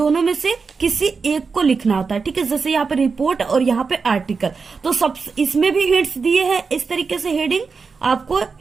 में से किसी एक को लिखना होता है, ठीक है। जैसे यहाँ पे रिपोर्ट और यहाँ पे आर्टिकल, तो सब इसमें भी हिंट्स दिए हैं इस तरीके से, हेडिंग आपको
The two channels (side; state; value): left; quieter; 4.9 dB